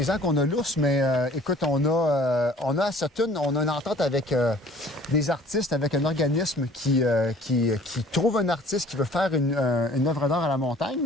ans qu'on a l'ours, mais écoute, on a à Sutton, on a une entente avec des artistes, avec un organisme qui trouve un artiste qui veut faire une œuvre d'art à la montagne.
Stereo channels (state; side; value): normal; both; correlation 0.51